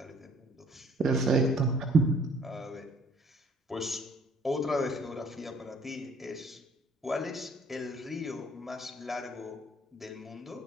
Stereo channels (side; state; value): both; normal; correlation 0.58